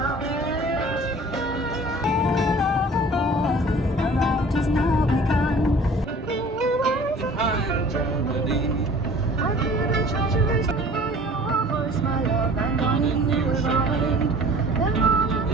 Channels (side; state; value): both; normal; correlation 0.47